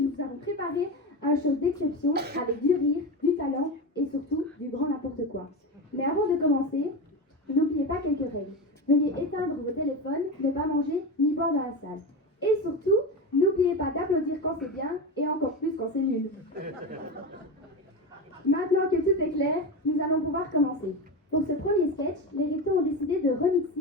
préparé un show d'exception avec du rire, du talent et surtout du grand n'importe quoi. Mais avant de commencer, n'oubliez pas quelques règles. Veuillez éteindre vos téléphones, ne pas manger ni boire dans la salle. Et surtout, n'oubliez pas d'applaudir quand c'est bien et encore plus quand c'est nul. Maintenant que tout est clair, nous allons pouvoir commencer. Pour ce premier sketch, les Rétos ont décidé de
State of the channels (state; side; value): normal; both; correlation 0.20